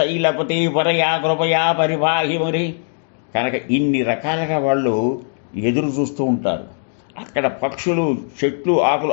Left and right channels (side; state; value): right; silent; 66 dB below the other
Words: పరయా కృపయా పరిపాహి మరి. కనుక ఇన్ని రకాలుగా వాళ్ళు ఎదురు చూస్తూ ఉంటారు. అక్కడ పక్షులు, చెట్లు, ఆకులు